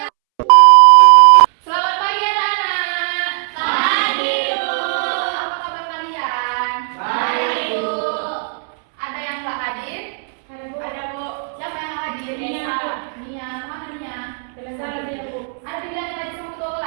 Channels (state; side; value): silent; left; 68 dB below the other